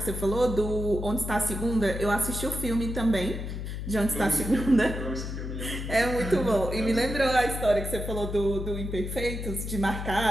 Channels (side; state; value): left; noise; hum, 5 dB below the sound